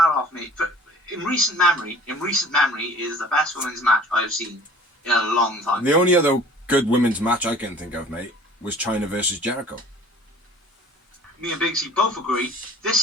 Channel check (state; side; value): normal; both; correlation 0.48